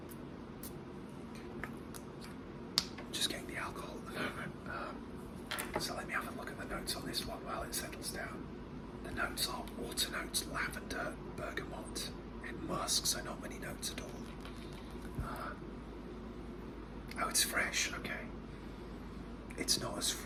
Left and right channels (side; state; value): both; identical; correlation 1.00